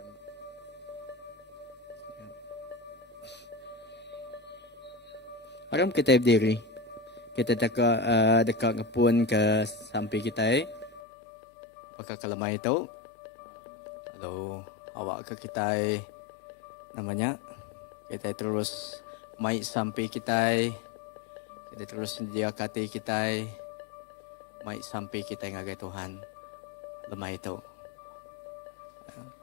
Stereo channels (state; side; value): drops out; right; at 11.0 s